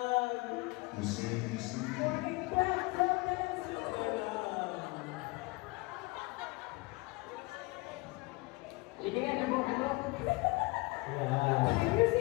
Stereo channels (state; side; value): quieter; right; 24.8 dB